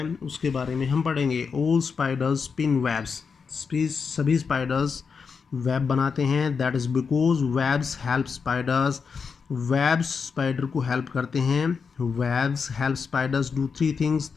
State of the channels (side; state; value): right; quieter; 5.6 dB